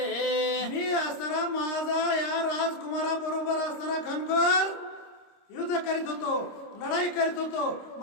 मी असणारा माझा या राजकुमाराबरोबर असणारा घनघोर युद्ध करीत होतो, लढाई करीत होतो,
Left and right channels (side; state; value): right; late; 26 ms